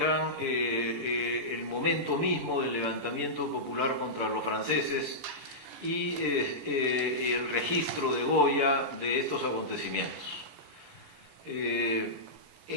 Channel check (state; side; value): late; left; 17 ms